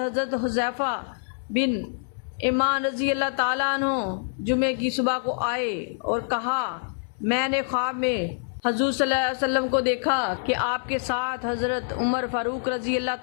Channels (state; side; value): silent; right; 60 dB below the other